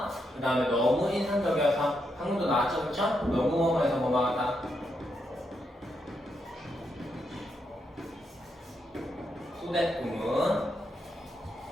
그 다음에 너무 인상적이어서 방금도 나왔죠, 그쵸? 너무 뭐뭐해서 뭐뭐하다 소댓구문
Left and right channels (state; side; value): normal; both; correlation 0.81